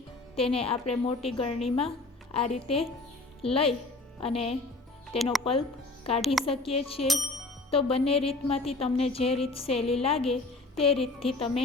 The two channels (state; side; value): quieter; right; 3.1 dB